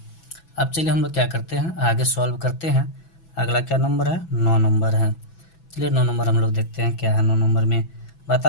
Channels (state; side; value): late; right; 6.0 ms